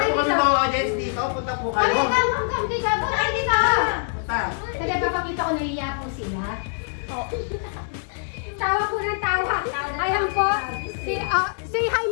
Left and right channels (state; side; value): silent; right; digital silence